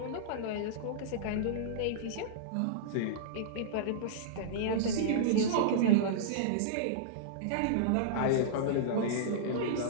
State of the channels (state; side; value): different; both; correlation -0.03